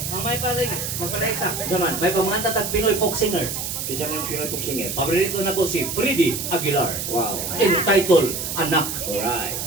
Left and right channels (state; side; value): noise; right; hiss, 4 dB below the sound